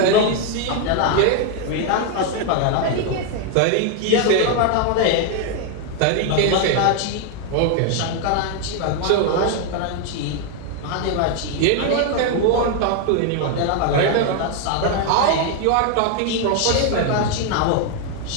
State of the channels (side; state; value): both; different; correlation 0.01